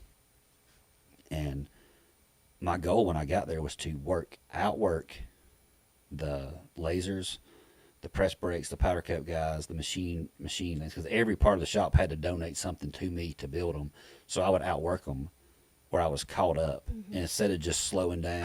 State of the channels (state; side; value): identical; both; correlation 1.00